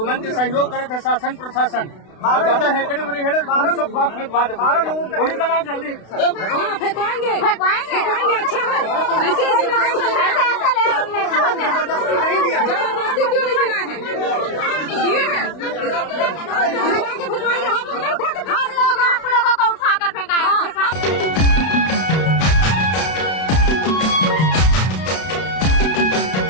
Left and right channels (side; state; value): right; late; 32 ms